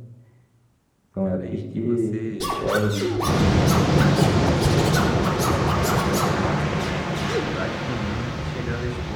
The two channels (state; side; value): identical; both; correlation 1.00